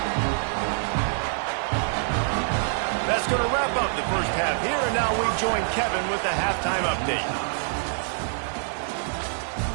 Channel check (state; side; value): silent; left; 61 dB below the other